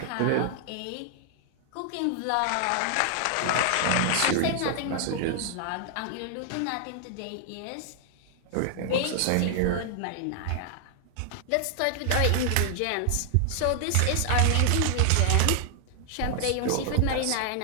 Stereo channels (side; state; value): both; different; correlation 0.00